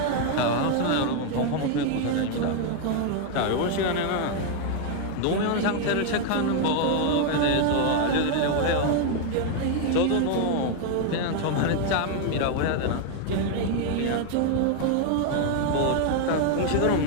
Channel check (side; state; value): both; different; correlation 0.01